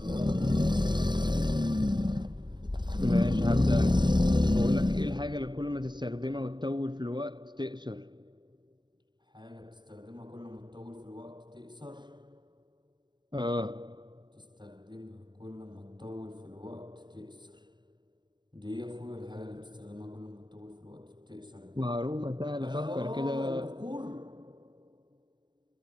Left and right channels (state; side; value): late; left; 0.22 ms